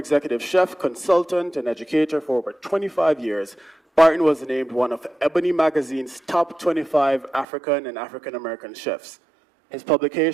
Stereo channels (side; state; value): left; drops out; at 7.5 s